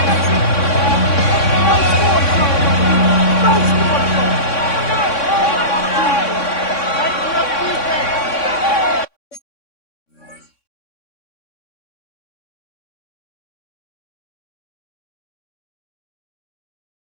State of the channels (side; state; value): right; late; 3.6 ms